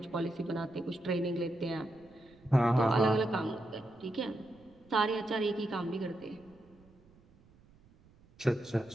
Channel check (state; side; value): noise; right; rumble, 28 dB below the sound